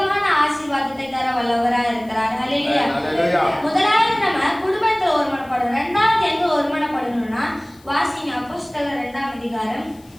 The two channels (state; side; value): noise; left; hiss, 29 dB below the sound